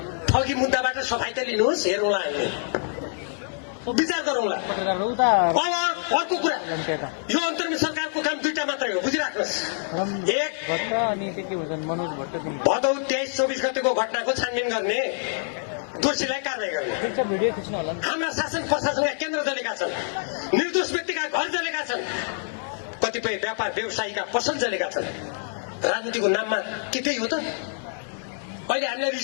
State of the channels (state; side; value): silent; right; 61 dB below the other